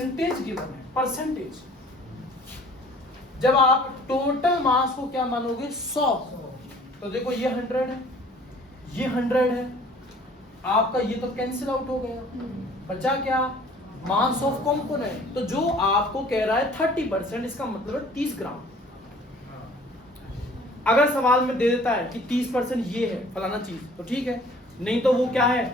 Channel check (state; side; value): normal; both; correlation 0.52